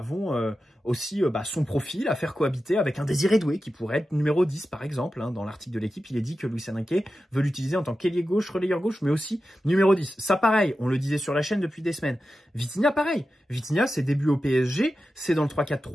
aussi son profil à faire cohabiter avec un Désiré Doué qui pourrait être numéro 10 par exemple. Hein. Dans l'article de l'équipe, il est dit que Luis Enrique veut l'utiliser en tant qu'ailier gauche, relayeur gauche, mais aussi numéro 10. Ça pareil, on le disait sur la chaîne depuis des semaines. Vitinha pareil. Vitinha, ses débuts au PSG, c'est dans le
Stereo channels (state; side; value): normal; both; correlation 0.92